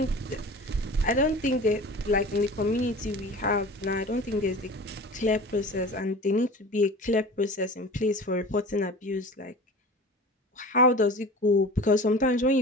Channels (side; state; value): both; normal; correlation 0.37